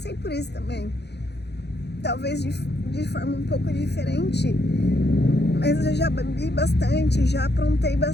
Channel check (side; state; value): right; late; 0.49 ms